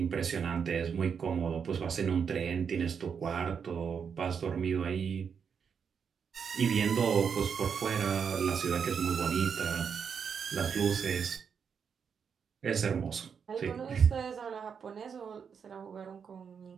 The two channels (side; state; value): left; quieter; 6.7 dB